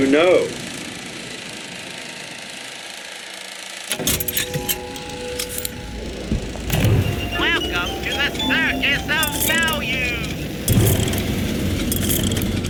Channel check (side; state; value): both; identical; correlation 1.00